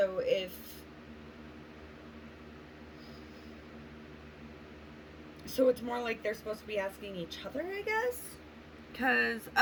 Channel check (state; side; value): identical; both; correlation 1.00